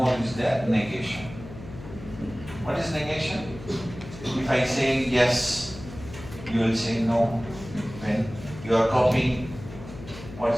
is there, negation. What is negation? If I say yes, you will say no. When you are copying, what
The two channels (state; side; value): noise; left; hum, 14 dB below the sound